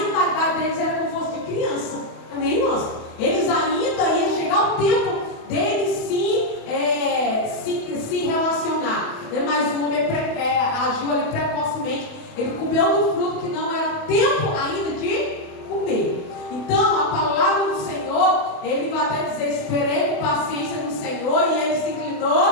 deles era como se fosse de criança, amém, irmãos? Eles ainda iam chegar o tempo deles se relacionar, né? Mas o homem agiu ali precocemente, ele comeu do fruto que não era tempo ainda de comer. Então a palavra do Senhor, ele vai até dizer, esperei com paciência no Senhor e ele se inclinou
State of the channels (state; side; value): late; right; 28 ms